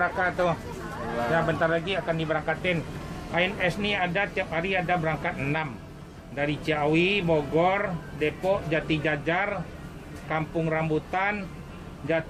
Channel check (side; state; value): both; identical; correlation 1.00